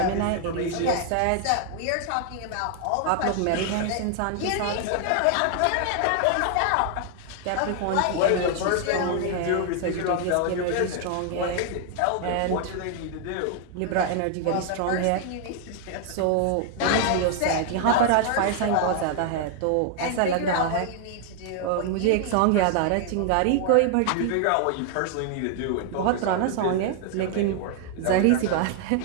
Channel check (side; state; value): both; different; correlation 0.00